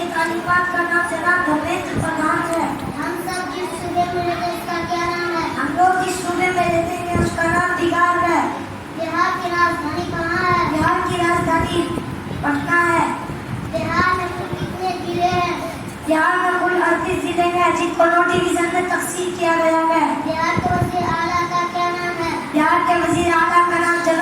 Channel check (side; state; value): both; identical; correlation 1.00